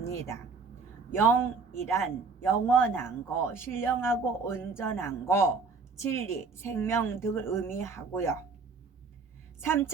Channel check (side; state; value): left; quieter; 4.7 dB